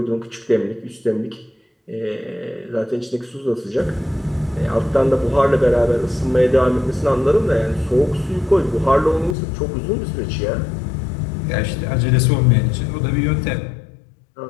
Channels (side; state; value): right; drops out; at 9.3 s